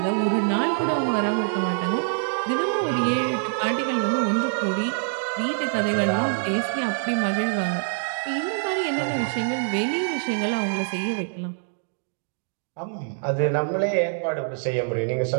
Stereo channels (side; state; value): left; silent; digital silence